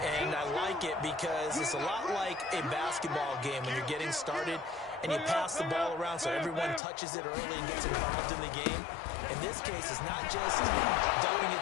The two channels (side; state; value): right; drops out; at 6.8 s